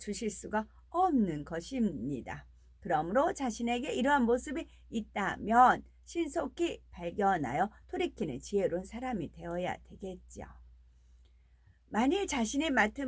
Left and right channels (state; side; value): identical; both; correlation 1.00